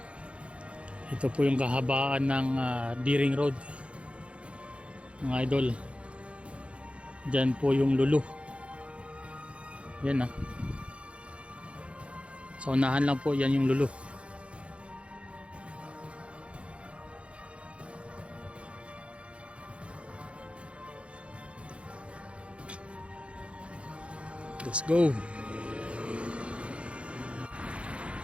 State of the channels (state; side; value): late; left; 0.060 ms